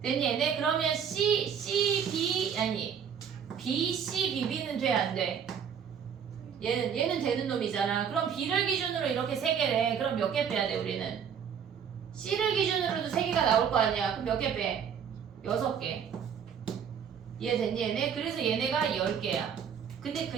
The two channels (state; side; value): quieter; left; 7.7 dB